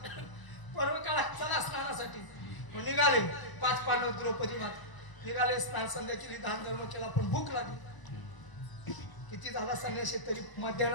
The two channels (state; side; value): late; right; 1.0 ms